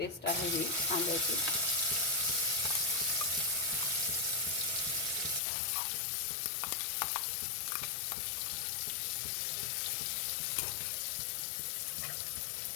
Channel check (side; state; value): right; drops out; at 5.4 s